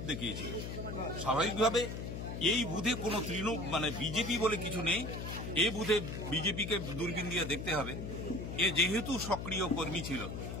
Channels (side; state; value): left; noise; hum, 6 dB below the sound